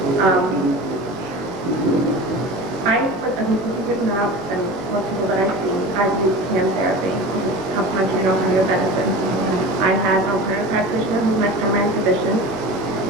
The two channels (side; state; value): both; normal; correlation 0.33